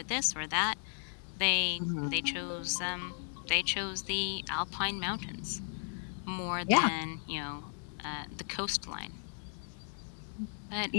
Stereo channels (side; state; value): right; silent; 54 dB below the other